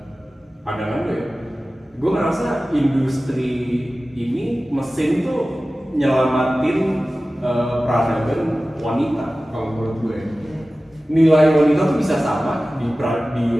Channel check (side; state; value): both; normal; correlation 0.96